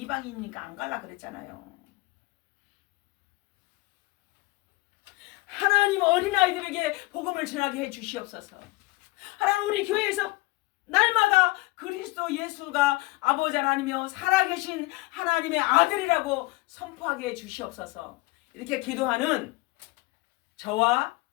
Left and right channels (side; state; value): right; quieter; 22.3 dB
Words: 안 갈라 그랬잖아요. 하나님, 어린아이들에게 복음을 전하게 해주시옵소서. 하나님, 우리 교회에서 날마다 그리스도 예수가 아버지 하나님이며 살아계신 하나님의 아들이라고 선포하게 해주시옵소서. 이렇게 기도하는 저와